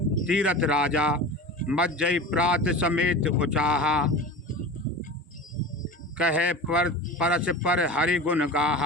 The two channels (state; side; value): normal; both; correlation 0.32